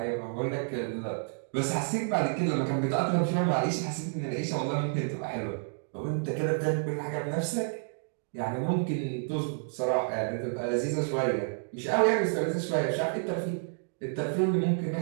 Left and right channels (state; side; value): silent; left; digital silence